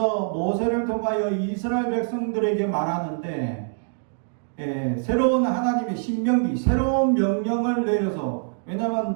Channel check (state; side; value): silent; left; digital silence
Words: 모세를 통하여 이스라엘 백성들에게 말하는데 새로운 하나님의 신명기 새로운 명령을 내려서,